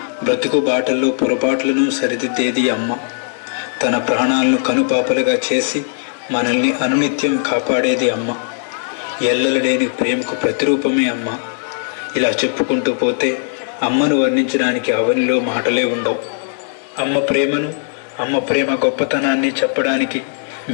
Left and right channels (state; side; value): silent; right; digital silence